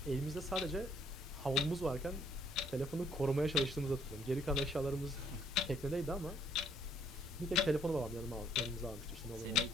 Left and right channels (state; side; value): normal; both; correlation 0.66